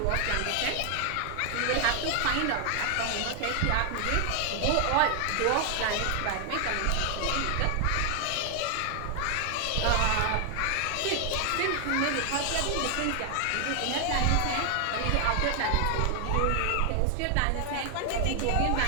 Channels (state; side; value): different; both; correlation 0.00